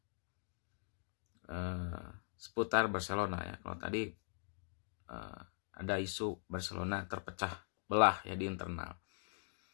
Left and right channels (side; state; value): right; silent; digital silence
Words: seputar Barcelona ya. Kalau tadi ada isu Barcelona terpecah belah ya di internal.